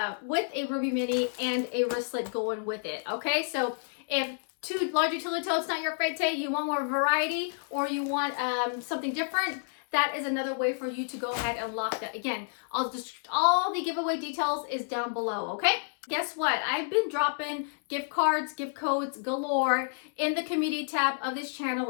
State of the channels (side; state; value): right; silent; 58 dB below the other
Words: Rubie Mini and a wristlet going with it, okay? So if 2 large utility totes not your forte, you want more variety, or you want something different, that is another way for you to go ahead and lock that. Again, all the giveaway details is down below, okay? Guess what? I've been dropping gift cards, gift codes galore in the community tab of this